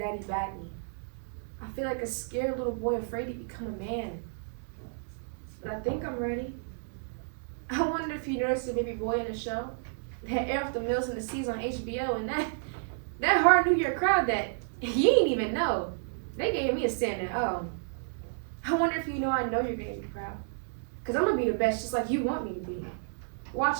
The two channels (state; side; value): silent; left; digital silence